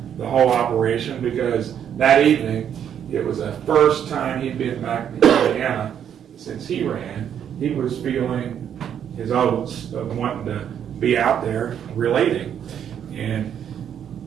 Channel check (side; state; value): left; quieter; 9.0 dB